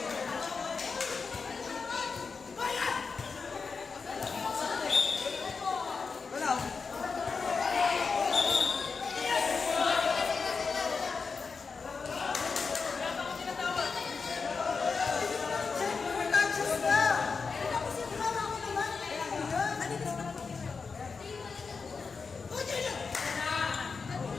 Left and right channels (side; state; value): right; quieter; 4.9 dB